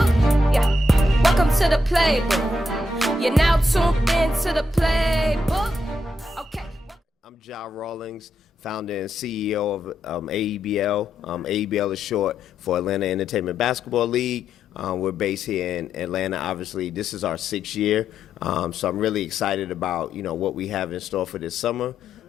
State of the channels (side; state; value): both; normal; correlation 0.81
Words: Yeah, welcome to the Playbook. You're now tuned into the Playbook. Okay. I'm Jah Rawlings, founder and CEO of AEBL. AEBL is short for Atlanta Entertainment Basketball League. We're based here in Atlanta. Obviously, this is our 6th year, so I'm really excited about what we have in store for this summer,